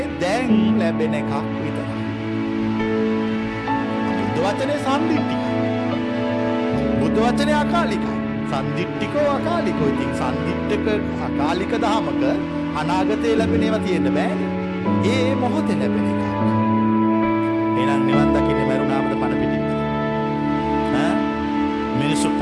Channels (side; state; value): both; identical; correlation 1.00